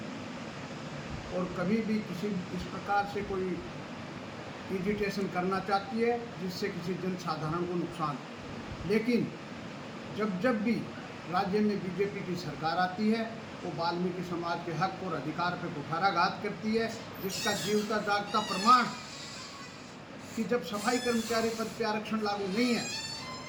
और कभी भी किसी इस प्रकार से कोई एजिटेशन करना चाहती है जिससे किसी जन साधारण को नुकसान। लेकिन जब भी राज्य में बीजेपी की सरकार आती है वो वाल्मीकि समाज के हक और अधिकार पर कुठाराघात करती है, जिसका जीवता जागता प्रमाण कि जब सफाई कर्मचारी पद पर आरक्षण लागू नहीं है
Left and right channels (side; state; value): both; identical; correlation 1.00